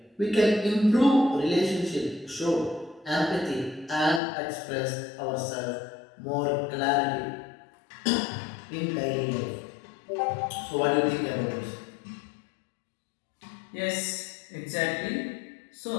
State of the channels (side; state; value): right; drops out; at 4.2 s